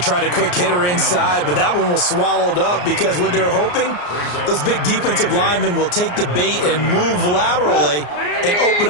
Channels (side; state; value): right; late; 34 ms